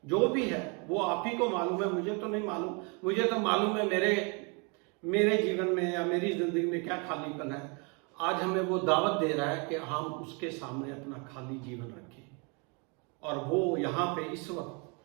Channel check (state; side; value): quieter; left; 33.2 dB